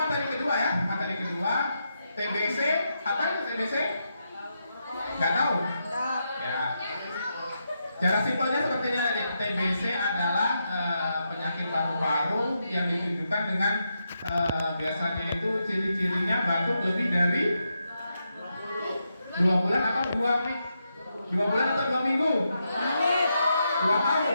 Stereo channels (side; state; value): both; inverted; correlation -0.84